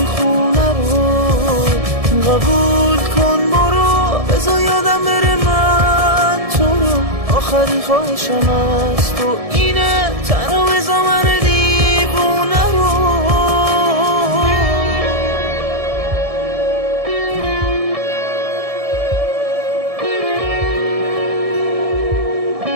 خونه رو. قبول کن برو، بذار یادم بره من تو رو، آخرین خواهشم از تو اینه، تنها بذار من دیوونه رو.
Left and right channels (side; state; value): left; late; 1.7 ms